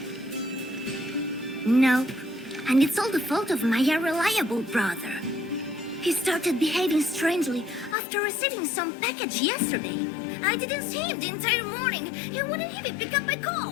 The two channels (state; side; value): drops out; right; at 8.0 s